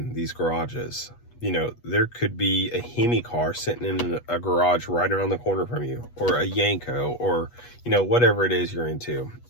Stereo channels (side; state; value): right; late; 8.3 ms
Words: these garages. You know, there could be a Hemi car sitting in a garage right around the corner from you, or a Yanko, or, you know, whatever it is you're into,